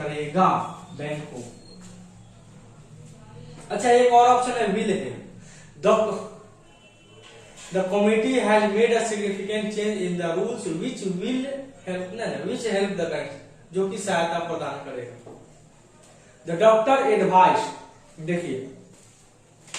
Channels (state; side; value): identical; both; correlation 1.00